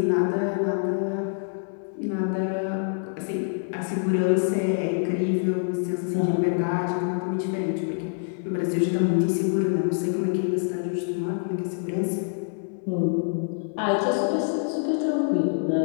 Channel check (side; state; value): right; silent; digital silence